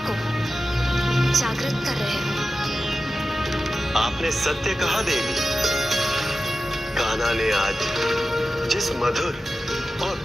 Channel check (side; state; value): both; normal; correlation 0.93